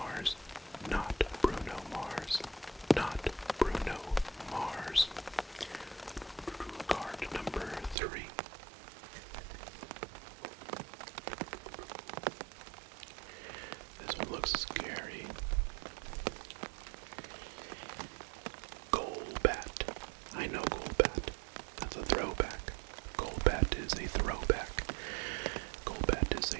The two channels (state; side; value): drops out; left; at 8.0 s